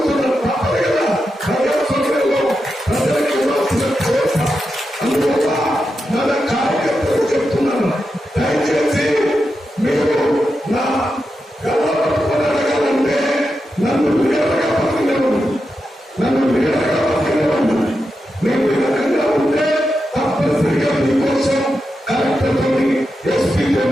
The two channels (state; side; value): normal; both; correlation 0.88